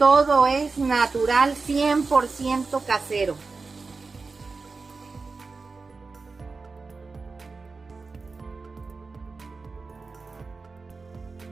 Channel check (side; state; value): left; quieter; 4.2 dB